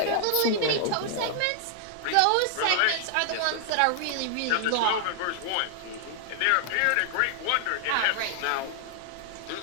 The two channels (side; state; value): both; different; correlation 0.00